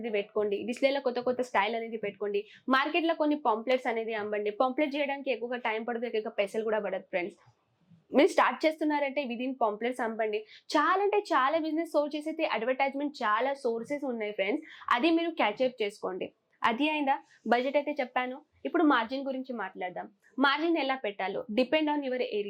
పెట్టుకోండి, డిస్ప్లేలో కొత్త స్టైల్ అనేది పెట్టుకోండి. మార్కెట్లో కొన్ని పాంప్లెట్స్ అనేది అమ్మండి. పాంప్లెట్ చేయడానికి ఎక్కువగా టైం పడుతుంది, ఎక్కువగా పైసలు కూడా పడదు ఫ్రెండ్స్. మీరు స్టార్ట్ చేస్తున్నారంటే విదిన్ పాంప్లెట్స్ అమ్మండి. చాలా అంటే చాలా బిజినెస్ సోర్స్ చేసేది అడ్వర్టైజ్మెంట్ చాలా సోర్సెస్ ఉన్నాయి ఫ్రెండ్స్, అది మీరు క్యాచప్ చేసుకోండి. అది అయిందా? బడ్జెట్ అయితే చెప్పాను. ఇప్పుడు మార్జిన్ గురించి మాట్లాడదాం. మార్జిన్ ఎలా పెట్టాలో డిపెండ్ ఆన్ యువర్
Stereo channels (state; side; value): identical; both; correlation 1.00